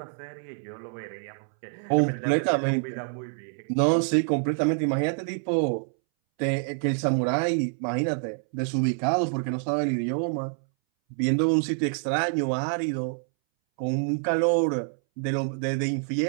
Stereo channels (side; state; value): left; silent; 60 dB below the other